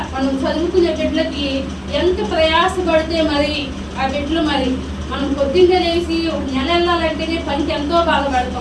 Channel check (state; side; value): identical; both; correlation 1.00